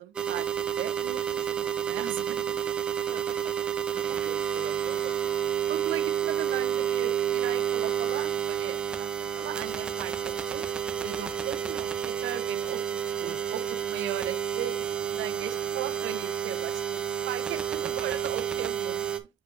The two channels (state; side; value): quieter; left; 9.3 dB